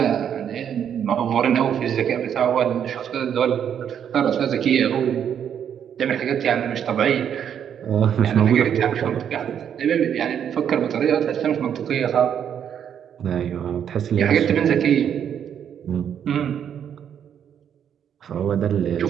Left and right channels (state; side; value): quieter; left; 8.7 dB